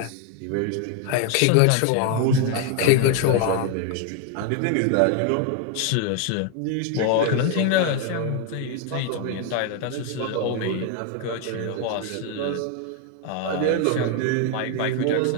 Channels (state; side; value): different; both; correlation 0.01